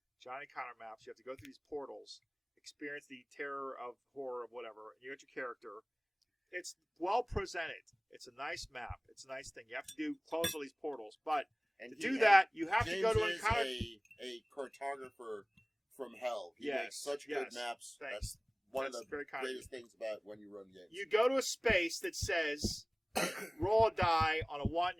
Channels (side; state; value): both; identical; correlation 1.00